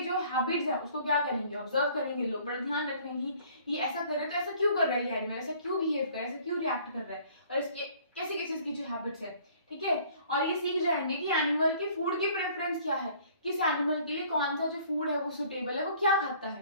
जो हैबिट्स है उसको क्या करेंगे, ऑब्जर्व करेंगे लोग, बड़ा ध्यान रखेंगे ये ऐसा कर रहे हैं तो ऐसा क्यों कर रहा है ये एनिमल, ऐसा क्यों बिहेव कर रहा है, ऐसा क्यों रिएक्ट कर रहा है, और इसके कैसे कैसे इसकी जो हैबिट्स है। ठीक है, और ये सीख जाएंगे कि एनिमल की फूड की प्रेफरेंस क्या है, किस एनिमल के लिए कौन सा जो फूड है वो सुटेबल है, वो क्या खाता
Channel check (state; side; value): inverted; both; correlation -0.55